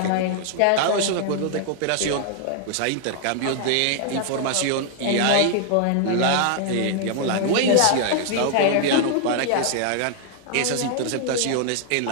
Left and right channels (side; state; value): both; different; correlation 0.00